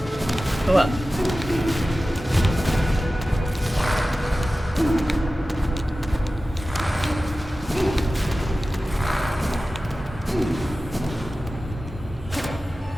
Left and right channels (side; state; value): both; normal; correlation 0.95